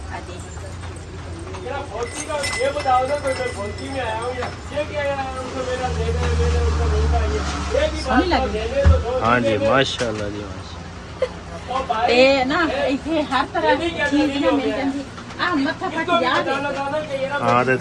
ਹਾਂਜੀ ਸੋਹਣੀ ਲੱਗਦੀ ਹਾਂਜੀ ਮਾਸ਼ਾਅੱਲਾ ਜੀ ਮਾਸ਼ਾਅੱਲਾ। ਤੇ ਨਾ ਇੱਥੇ ਹਰ ਤਰ੍ਹਾਂ ਦੀ ਚੀਜ਼ ਨਾ ਮਿਲ ਜਾਂਦੀ ਆ। ਮੱਥਾ ਫਟ ਜਾ ਹਾਂ ਤੇ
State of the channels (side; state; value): both; identical; correlation 1.00